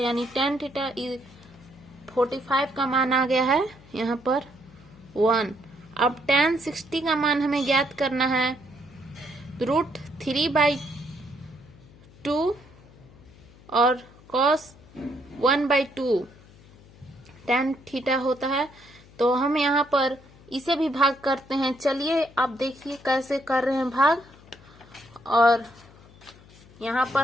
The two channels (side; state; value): left; noise; hum, 24 dB below the sound